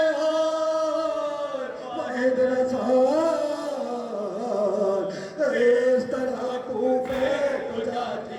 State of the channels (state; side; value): identical; both; correlation 1.00